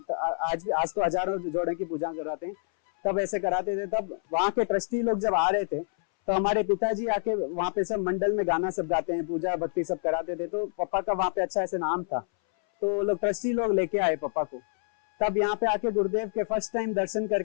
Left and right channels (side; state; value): right; silent; 60 dB below the other